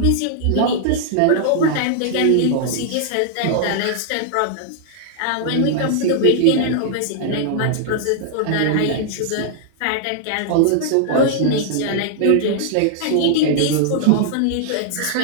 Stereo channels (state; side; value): different; both; correlation -0.01